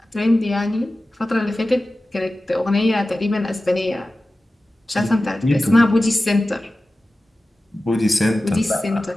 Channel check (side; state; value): both; normal; correlation 0.95